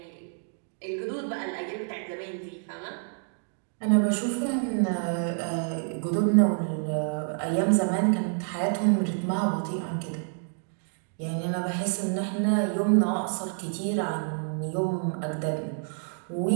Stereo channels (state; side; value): silent; left; 59 dB below the other